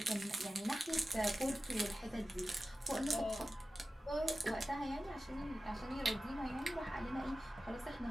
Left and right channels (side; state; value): both; normal; correlation 0.94